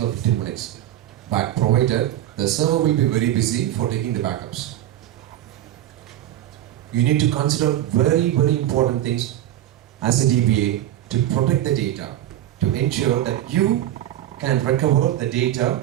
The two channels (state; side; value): quieter; left; 12.7 dB